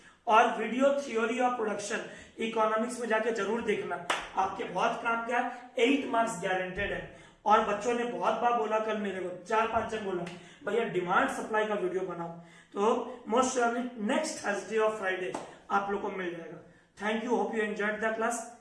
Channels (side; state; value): both; identical; correlation 1.00